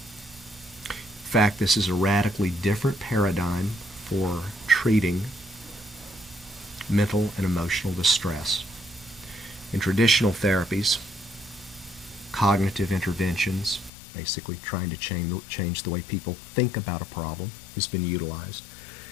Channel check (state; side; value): drops out; right; at 13.9 s